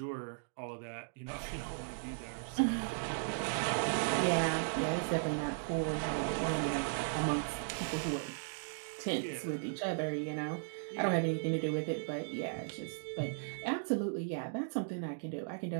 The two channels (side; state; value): left; silent; digital silence